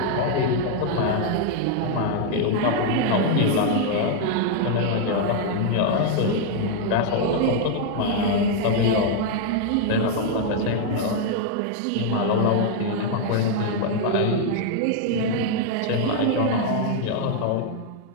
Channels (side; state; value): both; different; correlation 0.00